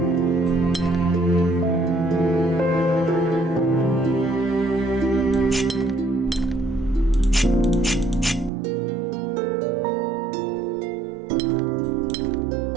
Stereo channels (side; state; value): left; drops out; at 8.5 s